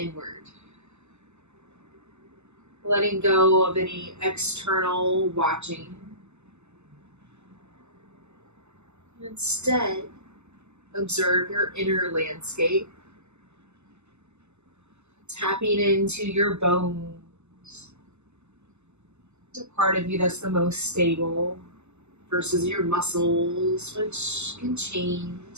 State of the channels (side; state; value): left; late; 0.82 ms